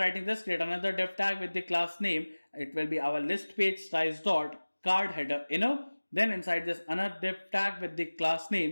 this, create another div tag with the class name. It will be our list page size.card header inner. Then inside this another div tag with the class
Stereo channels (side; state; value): both; inverted; correlation -1.00